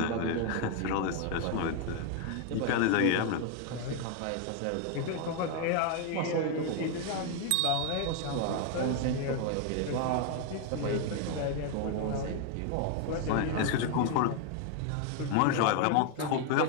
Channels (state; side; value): different; both; correlation 0.01